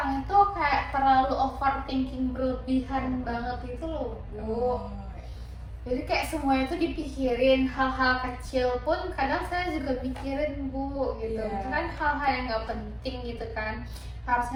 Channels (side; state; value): both; identical; correlation 1.00